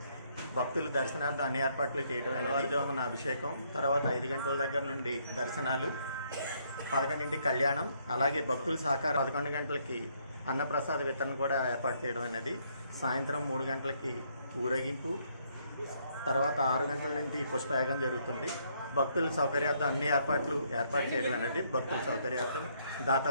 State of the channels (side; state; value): both; inverted; correlation -0.70